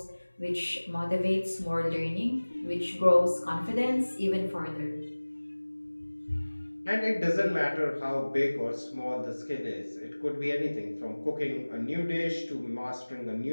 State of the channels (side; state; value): both; inverted; correlation -1.00